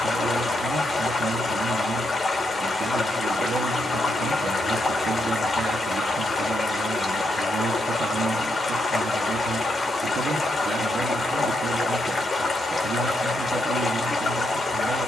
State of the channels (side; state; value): both; normal; correlation 0.80